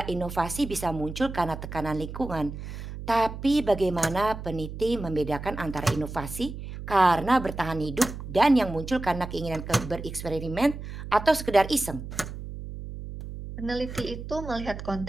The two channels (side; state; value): right; noise; hum, 9 dB below the sound